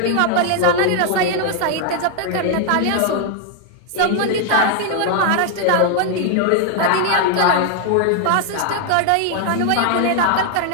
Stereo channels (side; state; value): both; different; correlation 0.00